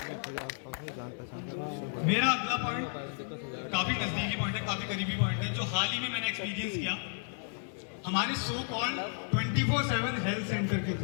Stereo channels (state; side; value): silent; right; 56 dB below the other